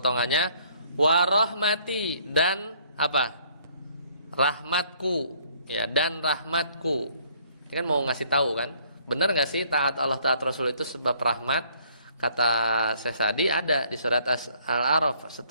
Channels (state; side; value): inverted; both; correlation -0.62